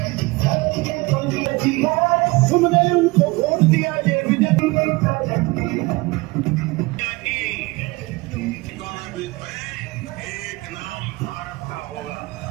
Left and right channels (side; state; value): left; quieter; 23.6 dB